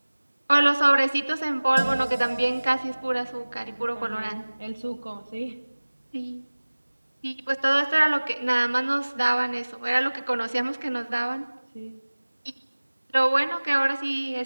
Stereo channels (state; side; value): inverted; both; correlation -1.00